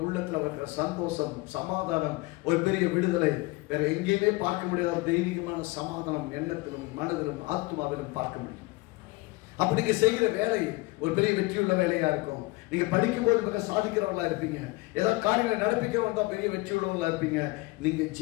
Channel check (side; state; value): right; quieter; 22.4 dB